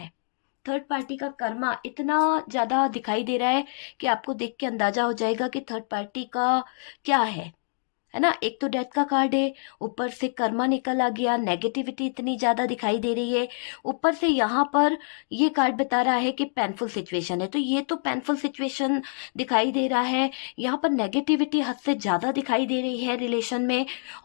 थर्ड पार्टी का कर्मा इतना ज्यादा दिखाई दे रहा है कि आपको देख के अंदाजा हो जाएगा कि थर्ड पार्टी का क्या है। है ना। एक तो डेथ का कार्ड है, ऊपर से कर्मा निकल आ गया, नेगेटिविटी इतनी ज्यादा दिखाई दे रही है, ऊपर से यहाँ पर ये कार्ड बता रहा है कि पेनफुल सिचुएशन है। तो ये तो पेनफुल सिचुएशन दिखाई दे रहा है, यहाँ पर नेगेटिविटी हद से ज्यादा दिखाई दे रही है रिलेशन में,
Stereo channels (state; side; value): silent; right; digital silence